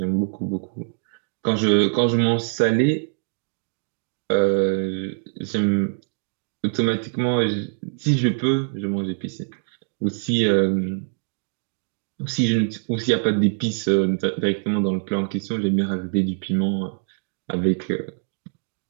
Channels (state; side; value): silent; left; digital silence